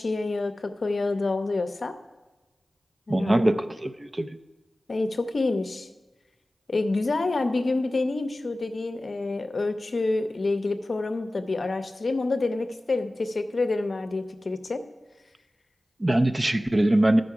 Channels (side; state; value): both; normal; correlation 0.96